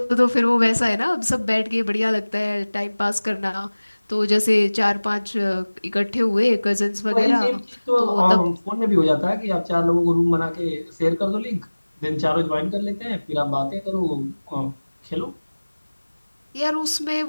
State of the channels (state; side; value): inverted; both; correlation -1.00